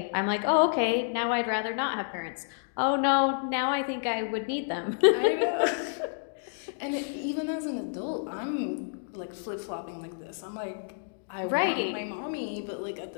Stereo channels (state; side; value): silent; right; digital silence